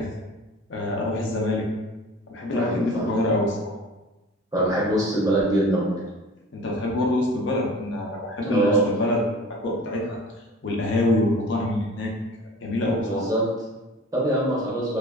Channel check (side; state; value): both; normal; correlation 0.42